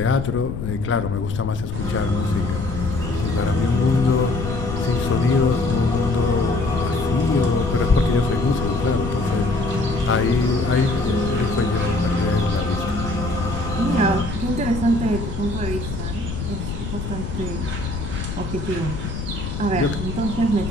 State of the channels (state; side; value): noise; left; rumble, 6 dB below the sound